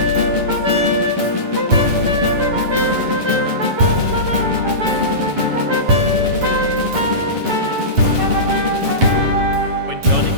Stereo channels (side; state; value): left; late; 8.9 ms